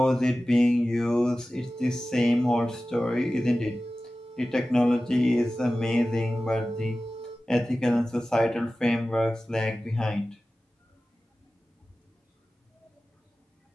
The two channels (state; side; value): normal; both; correlation 0.96